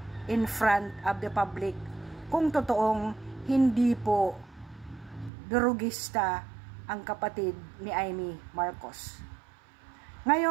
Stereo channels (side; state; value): left; drops out; at 5.3 s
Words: in front of the public kung totoong hindi po durugista ang kapatid ni Amy Marcos.